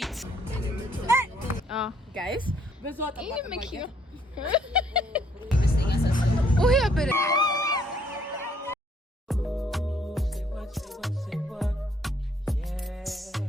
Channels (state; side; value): normal; both; correlation 0.66